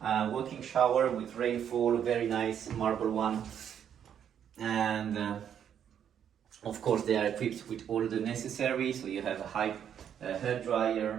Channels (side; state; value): left; quieter; 8.9 dB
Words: walking shower with rainfall, very nice marble one. And of course they are equipped with all the necessary. So you have a high hair